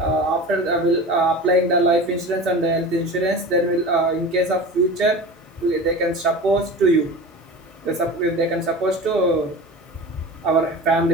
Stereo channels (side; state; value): both; normal; correlation 0.33